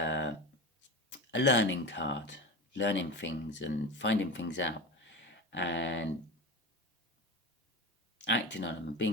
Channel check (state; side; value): normal; both; correlation 0.26